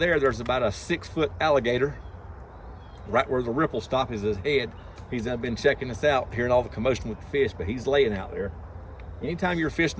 there's about a 6-foot alligator right where the ripple stop is his head. He's been checking us out, hearing all the commotion with the fish, but he's laying out there. Anytime you're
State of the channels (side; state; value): both; identical; correlation 1.00